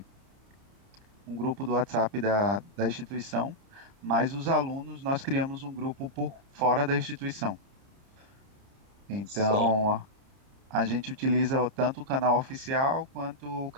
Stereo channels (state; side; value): late; left; 30 ms